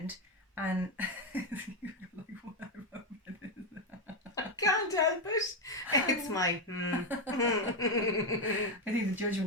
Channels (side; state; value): both; normal; correlation 0.07